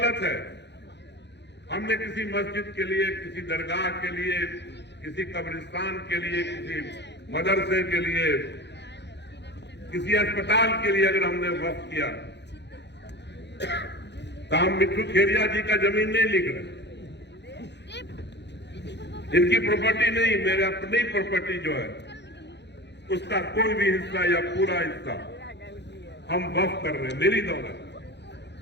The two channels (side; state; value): right; late; 0.50 ms